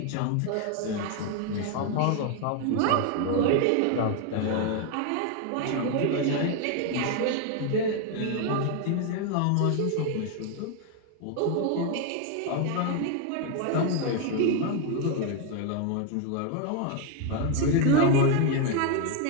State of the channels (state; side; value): different; both; correlation 0.01